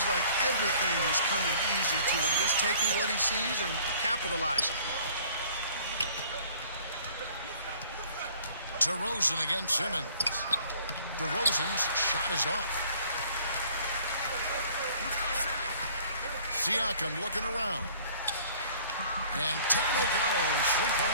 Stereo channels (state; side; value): inverted; both; correlation -0.53